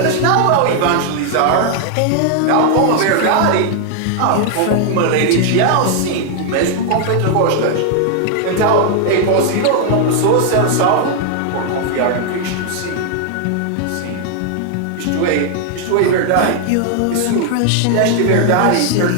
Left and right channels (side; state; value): both; different; correlation 0.00